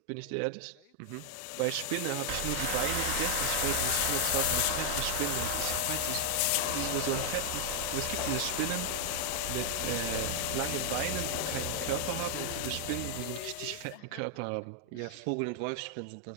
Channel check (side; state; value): both; different; correlation 0.00